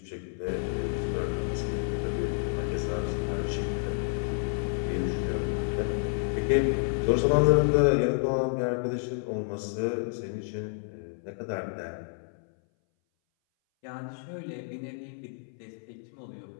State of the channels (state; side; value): silent; right; 58 dB below the other